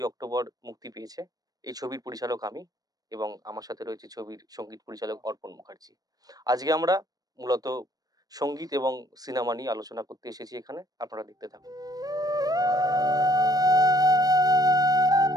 অক্টোবর মুক্তি পেয়েছে। এই ছবির পরিচালক আমি এবং আমার সাথে রয়েছে ছবির সঙ্গীত পরিচালক অর্পণ মুখার্জি। আজকে আমরা মূলত সঙ্গীত এবং সিনেমা নিয়ে আলোচনা করতে এসেছি এখানে। আপনারা দেখতে থাকুন।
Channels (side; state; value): left; late; 0.18 ms